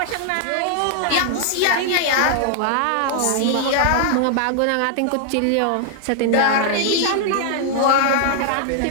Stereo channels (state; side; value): different; both; correlation -0.01